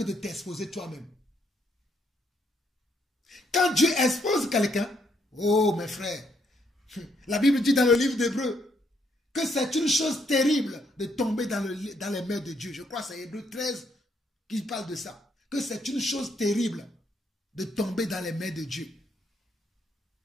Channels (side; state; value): both; normal; correlation 0.73